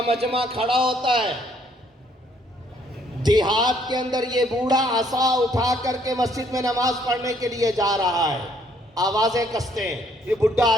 مجمع کھڑا ہوتا ہے، دیہات کے اندر یہ بوڑھا عصا اٹھا کر کے مسجد میں نماز پڑھنے کے لیے جا رہا ہے، آوازیں کستے ہیں، یہ بڈھا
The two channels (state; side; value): normal; both; correlation 0.66